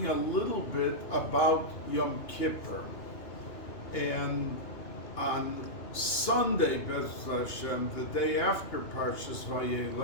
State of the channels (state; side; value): late; right; 2.8 ms